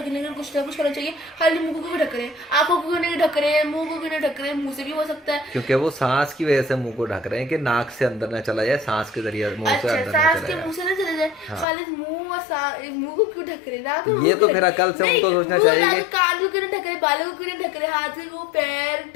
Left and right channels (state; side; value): drops out; right; at 11.7 s